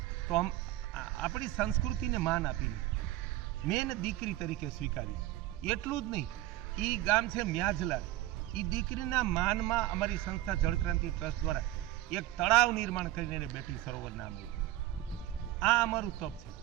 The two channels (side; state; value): left; quieter; 15.4 dB